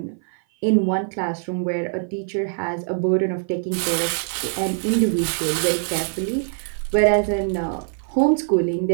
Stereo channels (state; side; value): silent; left; 57 dB below the other